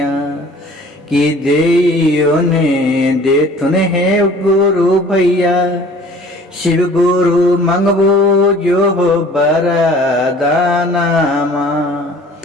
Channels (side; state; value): both; normal; correlation 0.49